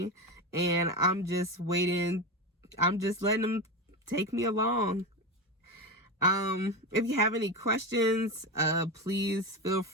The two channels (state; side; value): normal; both; correlation 0.19